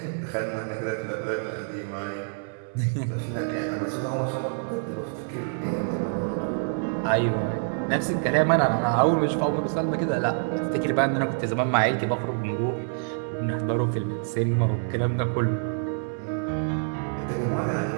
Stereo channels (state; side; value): silent; left; digital silence